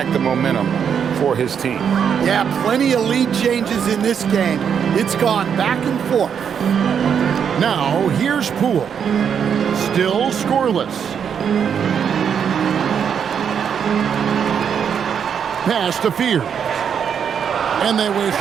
the momentum for his team. Yeah, plenty of lead changes in this game. It's gone back and forth. Now here's Poole. Still scoreless. Pass to Fear. And they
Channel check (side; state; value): left; quieter; 7.6 dB